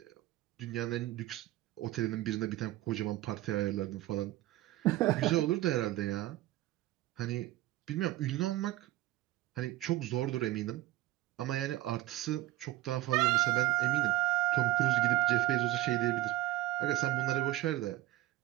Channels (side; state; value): left; quieter; 16.8 dB